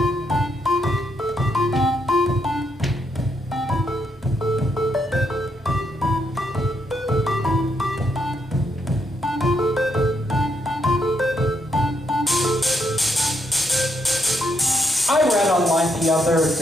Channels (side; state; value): both; normal; correlation 0.77